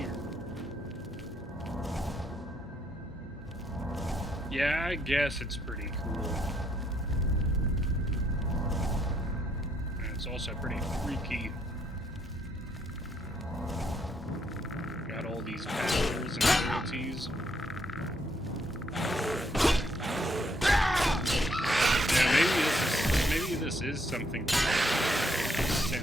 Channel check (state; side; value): normal; both; correlation 0.73